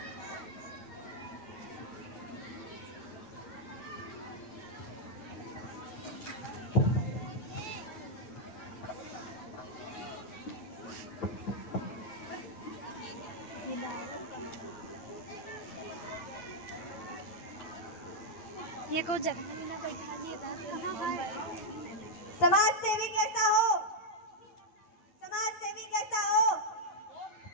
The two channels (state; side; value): late; right; 9.4 ms